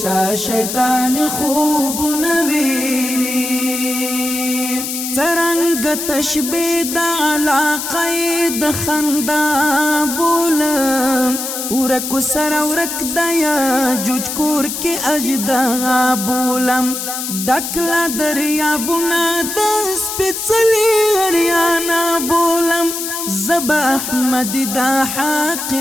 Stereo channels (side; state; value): left; noise; hiss, 5 dB below the sound